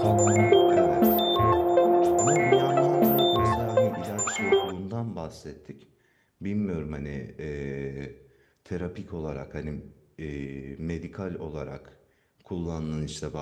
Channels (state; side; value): identical; both; correlation 1.00